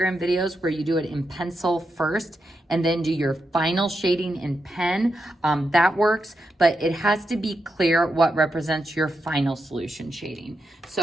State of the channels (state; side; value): normal; both; correlation 0.85